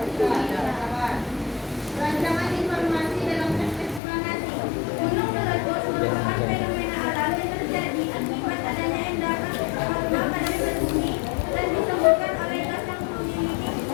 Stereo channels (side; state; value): right; drops out; at 4.0 s